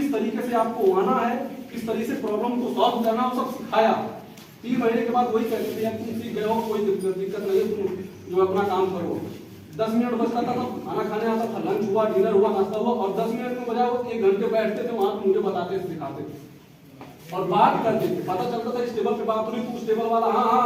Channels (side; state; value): both; identical; correlation 1.00